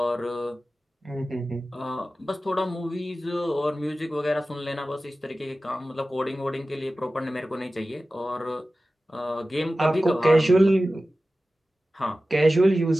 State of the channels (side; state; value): both; normal; correlation 0.95